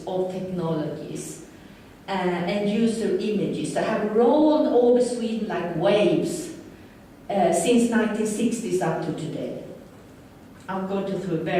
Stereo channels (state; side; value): identical; both; correlation 1.00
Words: of technologies and user images. I have rolled over Sweden like waves since 1960s up to today. I'll go through